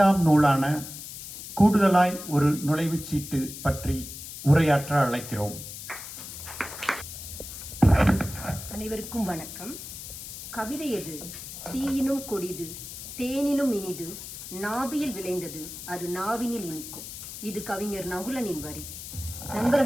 நூலான கூடுதலாய் ஒரு நுழைவுச்சீட்டு பற்றி உரையாற்ற அழைக்கிறோம். அனைவருக்கும் வணக்கம். கவிதை எது? தீயினும் கொடிது, தேனினும் இனிது, நாபியில் விளைந்தது, அது நாவினில் இனிக்கும். இது கவிஞர் நகுலனின் வரி.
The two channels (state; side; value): noise; left; hiss, 11 dB below the sound